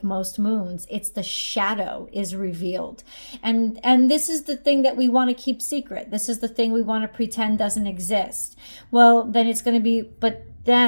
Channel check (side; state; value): both; inverted; correlation -1.00